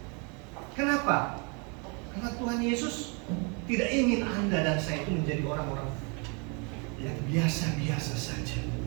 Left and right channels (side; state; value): left; quieter; 33.5 dB